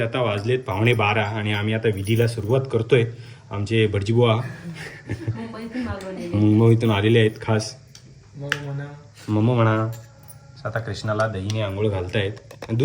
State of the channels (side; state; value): both; identical; correlation 1.00